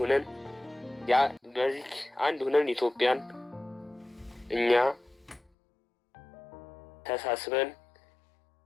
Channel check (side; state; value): right; drops out; at 5.4 s